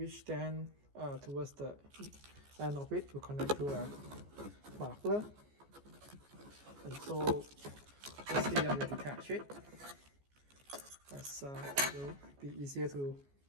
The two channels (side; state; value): left; late; 14 ms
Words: then towards the end of it will connect to a muffler. And so firstly I will detach it, as it will be easier to